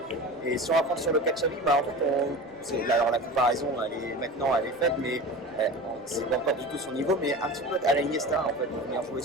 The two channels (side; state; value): left; noise; rumble, 29 dB below the sound